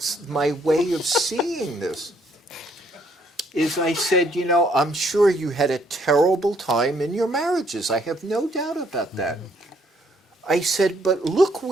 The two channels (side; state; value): both; normal; correlation 0.68